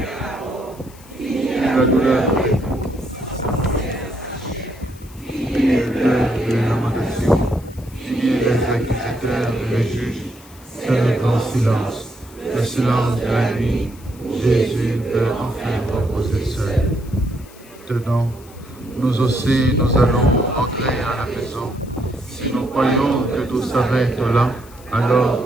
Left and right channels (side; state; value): left; noise; hiss, 24 dB below the sound